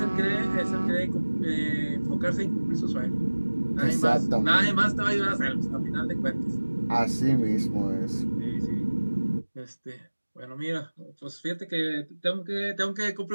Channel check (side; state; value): both; inverted; correlation -1.00